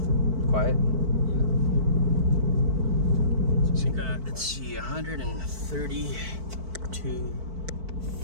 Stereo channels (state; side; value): late; left; 4.5 ms